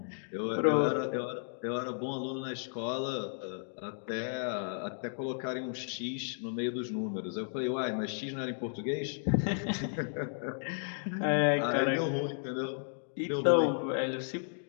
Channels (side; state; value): right; silent; digital silence